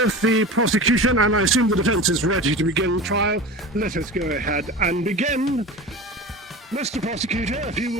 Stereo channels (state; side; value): normal; both; correlation 0.33